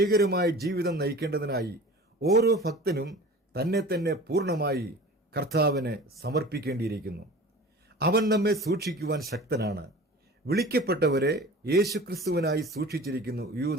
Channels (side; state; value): both; normal; correlation 0.40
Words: ജീവിതം നയിക്കേണ്ടതിനായി ഓരോ ഭക്തനും തന്നെ തന്നെ പൂർണ്ണമായി കർത്താവിന് സമർപ്പിക്കേണ്ടിയിരിക്കുന്നു. അവൻ നമ്മെ സൂക്ഷിക്കുവാൻ ശക്തനാണ്. വിളിക്കപ്പെട്ടവരെ യേശുക്രിസ്തുവിനായി സൂക്ഷിച്ചിരിക്കുന്നു.